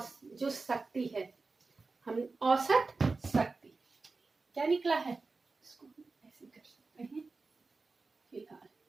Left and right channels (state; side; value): quieter; left; 3.9 dB